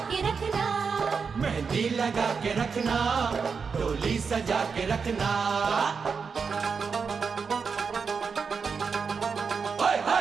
के रखना, मेहंदी लगा के रखना, डोली सजा के रखना।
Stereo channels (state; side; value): quieter; left; 5.6 dB